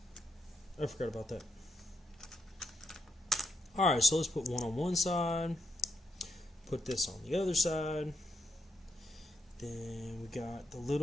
forgot about that. Alright, so let's put one on one side. Put this on the other side. Then we got the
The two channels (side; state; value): both; normal; correlation 0.79